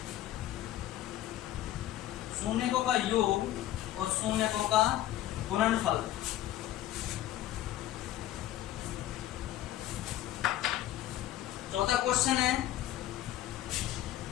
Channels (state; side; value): quieter; right; 13.8 dB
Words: शून्यकों का योग और शून्यकों का गुणनफल। चौथा क्वेश्चन है